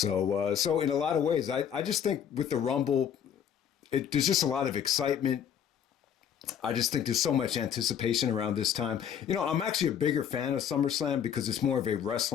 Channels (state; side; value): quieter; right; 8.8 dB